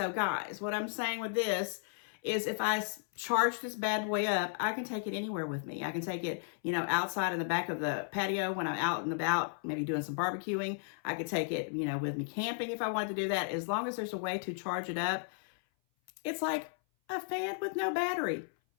guys, what I'm saying with this is if I charge this bad boy up, I can take it anywhere with me. I can take it, outside in the back of the patio when I'm out and about, maybe doing some barbecuing. I could take it, with me camping if I wanted to do that. As long as there's a way to charge it up, it's like a fan with no battery.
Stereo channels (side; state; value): right; silent; 55 dB below the other